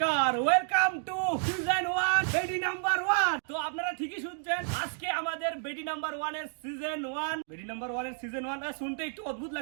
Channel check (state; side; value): silent; left; 57 dB below the other